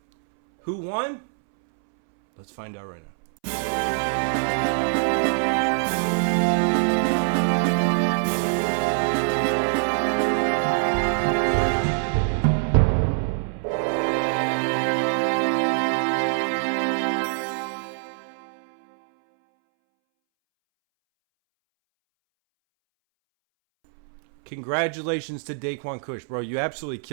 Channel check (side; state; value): left; silent; 63 dB below the other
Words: Who won? Let's find out right now. Congratulations to Daquan Kush, bro. You absolutely